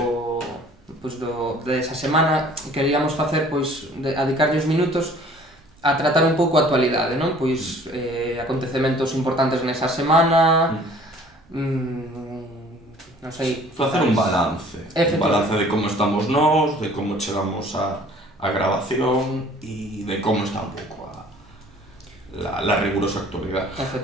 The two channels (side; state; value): both; normal; correlation 0.52